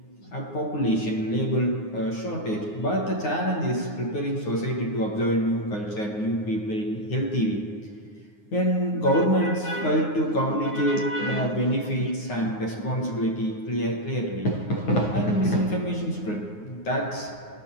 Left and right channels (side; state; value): right; late; 9.6 ms